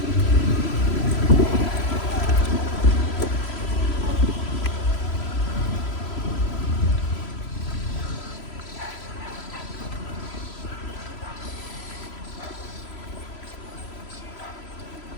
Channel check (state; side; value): late; right; 3.0 ms